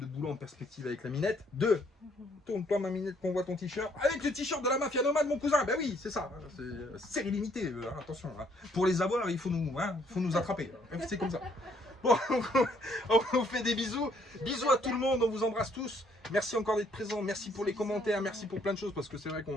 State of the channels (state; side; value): normal; both; correlation 0.66